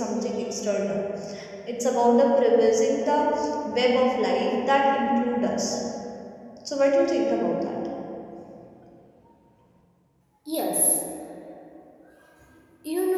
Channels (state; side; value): identical; both; correlation 1.00